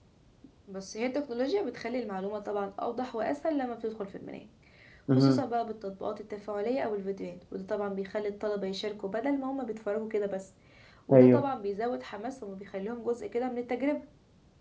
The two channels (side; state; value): both; identical; correlation 1.00